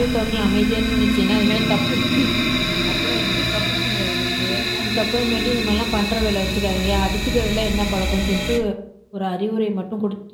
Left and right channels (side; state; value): both; identical; correlation 1.00